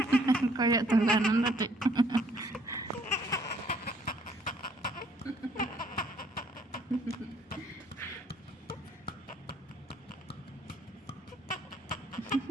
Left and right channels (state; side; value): normal; both; correlation 0.63